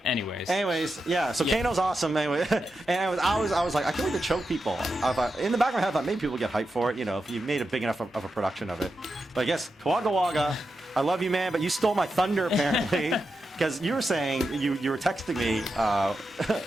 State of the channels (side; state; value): both; normal; correlation 0.88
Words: Anyways, yeah. So Kano's awesome. Anyway, and I was like, I can't wait to choke people. I thought, in the back of my head, I thought maybe people get hyped for it. You know, if you made a big enough of a production of it. But I guess Kawaga, I love you, man, but you stole my thunder apparently. Because you were saying you were texting me,